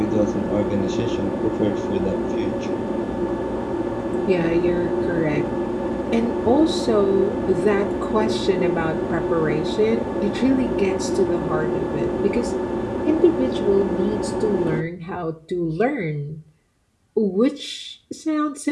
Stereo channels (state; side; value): identical; both; correlation 1.00